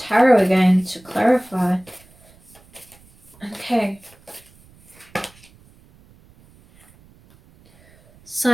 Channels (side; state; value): right; noise; rumble, 28 dB below the sound